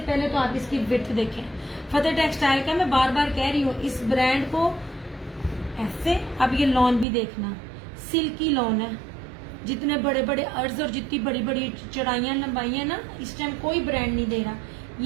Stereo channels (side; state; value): left; drops out; at 7.1 s